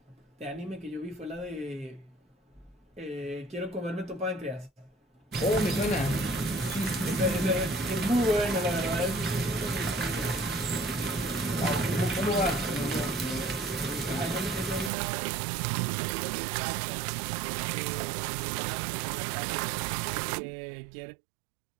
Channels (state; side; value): drops out; left; at 14.9 s